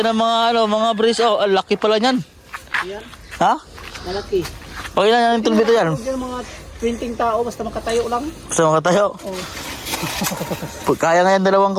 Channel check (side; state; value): both; identical; correlation 1.00